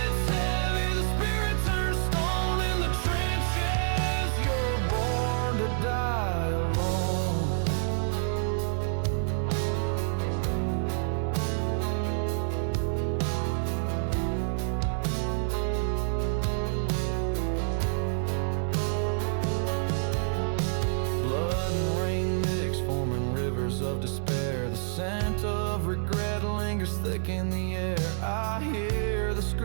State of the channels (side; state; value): left; silent; 56 dB below the other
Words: heavy, the spirit turns stone. In the trenches, you're born to die alone. Blood and rain mix, forming rivers of despair. The scent of regret lingers thick in the air. I hear the